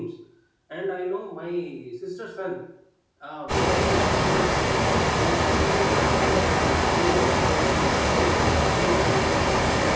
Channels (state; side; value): identical; both; correlation 1.00